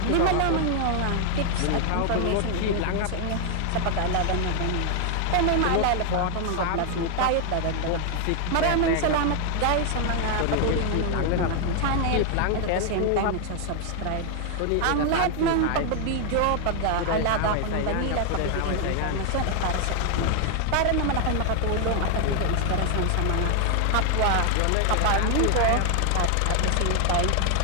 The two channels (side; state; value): both; different; correlation 0.00